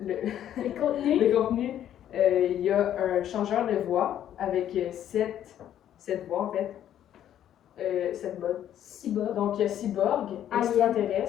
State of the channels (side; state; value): right; quieter; 10.8 dB